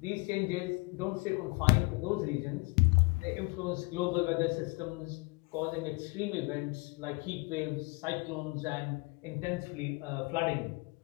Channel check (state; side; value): quieter; right; 27.7 dB